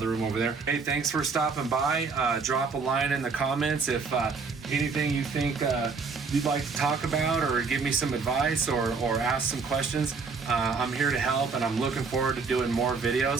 room over there. Hey, thanks for stopping by. Drop a line in the comments if anything you think you'd like to talk about, or give me some advice, or ask some questions. I'm here to help, and I'm looking forward to doing more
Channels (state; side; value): quieter; left; 4.8 dB